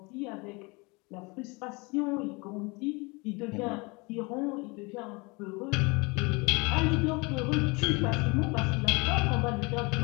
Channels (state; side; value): quieter; right; 27.4 dB